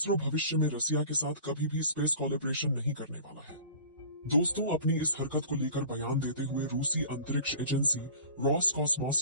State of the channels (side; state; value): both; inverted; correlation -0.42